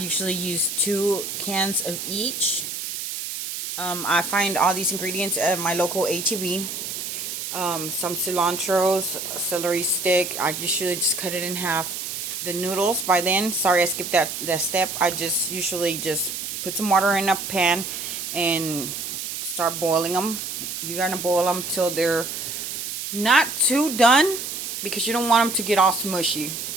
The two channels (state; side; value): noise; right; hiss, 5 dB below the sound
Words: use 2 cans of each. I find all these ingredients at my local HEB. Some cilantro, celery stick. I usually just cut it in half. The noodles, by then, sorry I skipped that step. I just usually just put some water in a pan and start boiling them. You're going to boil them till they're not too done, because you don't want them to get all smushy.